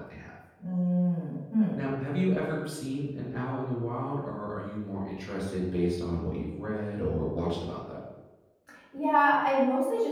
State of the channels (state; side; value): identical; both; correlation 1.00